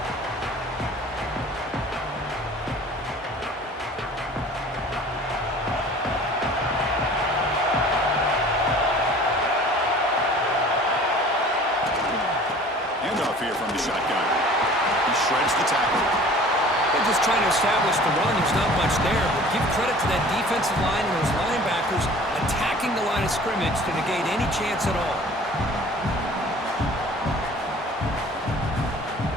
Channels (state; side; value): normal; both; correlation 0.47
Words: Here from the shotgun. He shreds the tackle. They're just trying to establish the run. There's not much there, but give credit to that defensive line and those linebackers attacking the line of scrimmage to negate any chance at all.